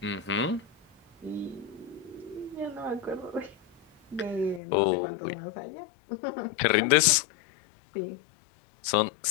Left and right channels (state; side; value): drops out; right; at 4.6 s